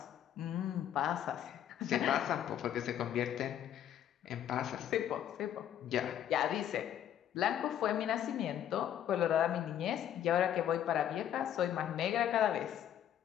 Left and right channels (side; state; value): right; quieter; 10.5 dB